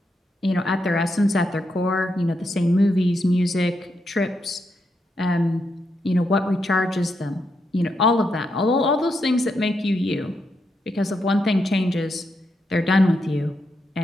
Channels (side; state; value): both; normal; correlation 0.82